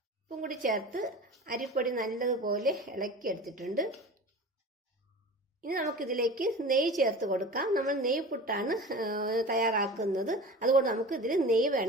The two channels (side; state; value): both; normal; correlation 0.35